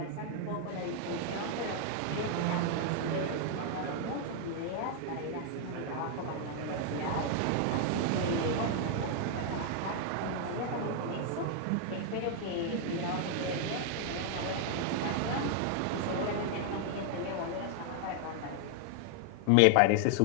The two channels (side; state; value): both; different; correlation 0.00